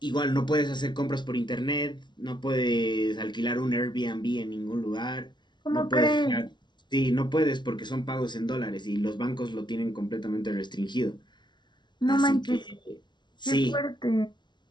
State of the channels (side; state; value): right; late; 0.22 ms